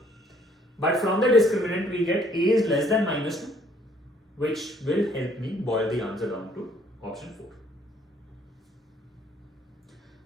But from the discriminant we get a is less than minus 2, which will help me boil the answer down to option 4.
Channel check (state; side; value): normal; both; correlation 0.63